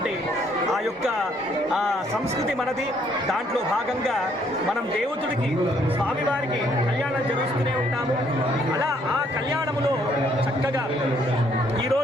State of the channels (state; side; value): normal; both; correlation 0.67